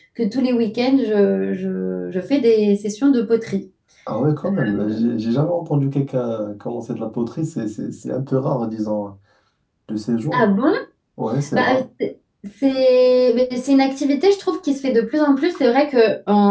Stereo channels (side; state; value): both; identical; correlation 1.00